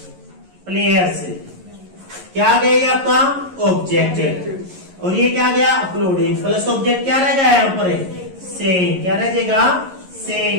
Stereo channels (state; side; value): late; left; 11 ms